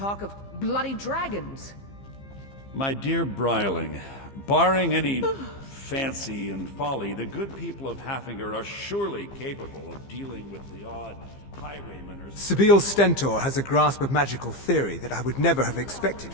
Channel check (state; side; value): late; right; 15 ms